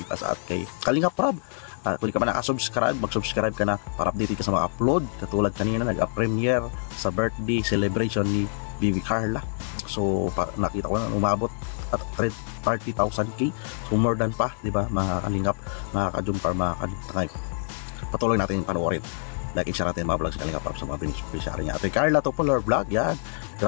us at kay Kalingap Rob. Kung hindi ka pa nakasubscribe, mag-subscribe ka na para update ka sa mga upload. Katulad kanina, nag-premiere sa birthday celebration ni Bibi Carla. So nakita ko na umabot at 30,000k. So more than pa, di ba, mga kalingap, mga ka-jumper, mga kalingap. Patuloy natin panoorin, like and share natin mga vlogs Kalingap sa mga beneficiary niya. Ate Carla Topolar Vlog, yan,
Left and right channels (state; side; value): silent; right; digital silence